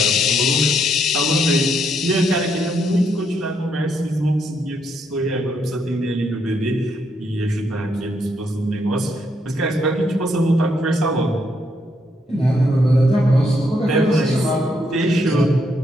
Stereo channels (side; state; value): both; normal; correlation 0.75